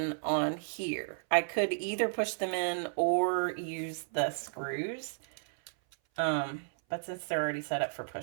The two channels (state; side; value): silent; left; 56 dB below the other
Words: on here. I could either push them in or use the screws. But since they're already set up for